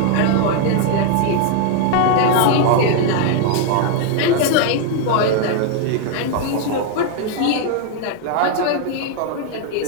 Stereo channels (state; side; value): different; both; correlation 0.00